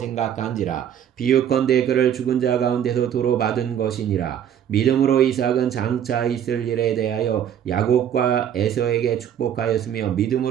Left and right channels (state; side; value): quieter; left; 9.5 dB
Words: 비유컨대 그를 죽은 자 가운데서 도로 받은 것이니라. 믿음으로 이삭은 장차 있을 일에 대하여 야곱과 에서에게 축복하였으며